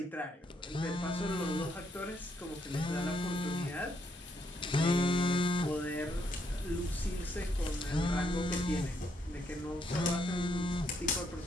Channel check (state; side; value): normal; both; correlation 0.74